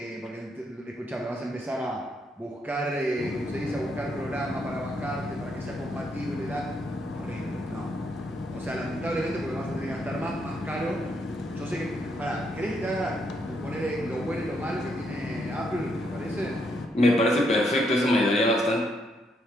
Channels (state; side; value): normal; both; correlation 0.76